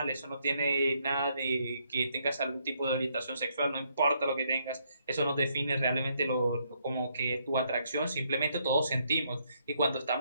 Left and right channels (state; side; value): inverted; both; correlation -0.73